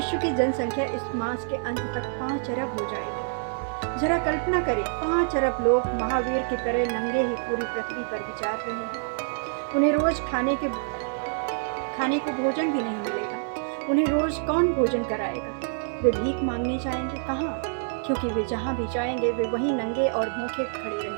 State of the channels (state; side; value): silent; left; 60 dB below the other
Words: की जनसंख्या इस मास के अंत तक 5 अरब हो जाएगी। जरा कल्पना करें, 5 अरब लोग महावीर की तरह नंगे ही पूरी पृथ्वी पर विचार रहे हैं। उन्हें रोज खाने को भोजन भी नहीं मिलेगा। उन्हें रोज कौन भोजन कराएगा? वे भीख मांगने जाएंगे कहाँ? क्योंकि वे जहाँ भी जाएंगे वे वहीं नंगे और भूखे खड़े